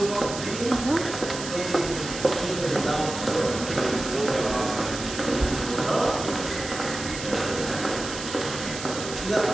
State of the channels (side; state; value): right; noise; hiss, 9 dB below the sound